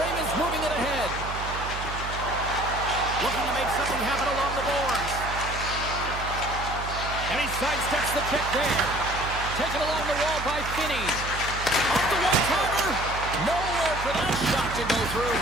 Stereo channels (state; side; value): noise; right; hum, 8 dB below the sound